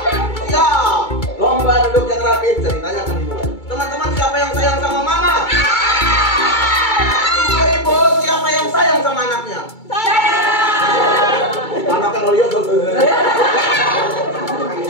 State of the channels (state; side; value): late; right; 2.2 ms